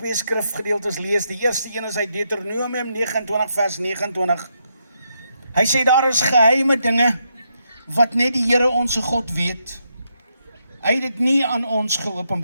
skrifgedeeltes lees. Die eerste een is uit Deuteronomium 29 vers 29. Hy sê daar is geheime dinge wat net die Here ons God weet. Hy het dit nie aan ons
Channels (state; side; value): inverted; both; correlation -0.80